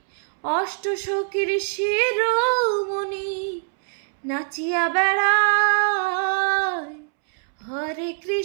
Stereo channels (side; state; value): left; silent; 63 dB below the other